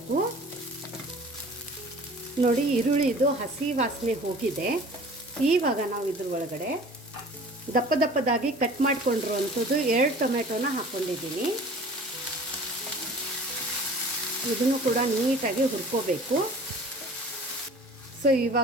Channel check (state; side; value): normal; both; correlation 0.45